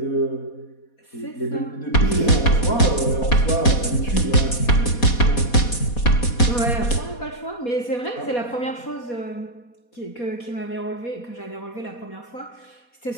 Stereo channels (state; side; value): late; right; 4.2 ms